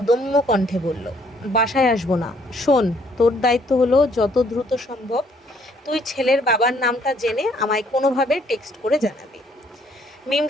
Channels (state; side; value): normal; both; correlation 0.65